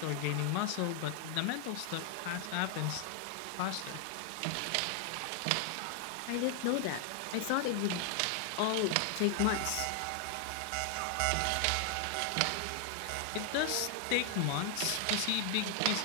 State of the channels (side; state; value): both; different; correlation 0.00